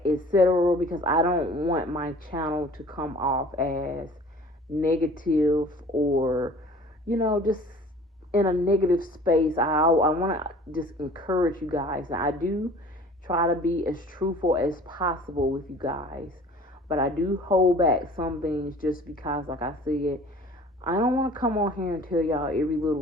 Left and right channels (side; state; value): both; normal; correlation 0.47